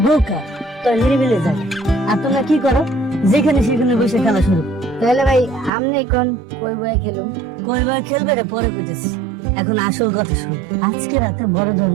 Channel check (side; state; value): left; drops out; at 5.7 s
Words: বোকা, তো নিরিবিলে যাবে। আর তোমরা কি করো, যেখানে সেখানে বসে খেলা শুরু। তাহলে ভাই আমনে কোন কই বই খেলুম? কই বার খেলবে রে পরে বুঝেছি, এখন আসল কথা শুনো। আজকে রাতে বড়